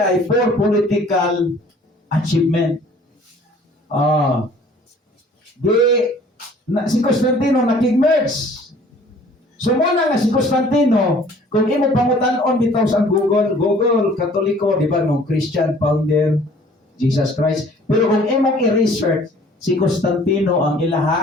for political achievement. Si Constantino nakig-merge. So muna nga si Constantino, kung imo pangutan-on bitaw sa Google, Katoliko, di ba, no, Christian founder, Jesus Christ. Pero kung imong i-research, si Constantino ang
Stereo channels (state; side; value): normal; both; correlation 0.53